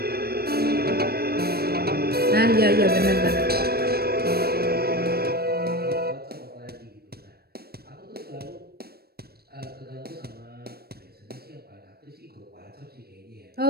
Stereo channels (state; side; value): late; left; 0.46 ms